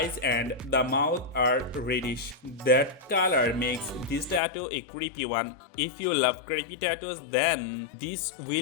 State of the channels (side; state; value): right; drops out; at 4.4 s